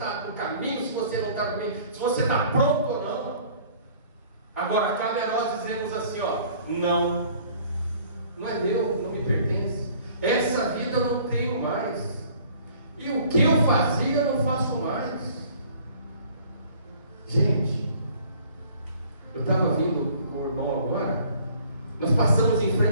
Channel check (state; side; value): inverted; both; correlation -0.54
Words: no caminho, se você não está no caminho, se você está pronto ou não. Agora, cabe a nós dizermos assim: ó, não é meu, não me pertence. Essa vida eu não tenho mais. E o que eu fazia eu não faço mais. Gente, eu estava vindo com o irmão agora. Nós passamos em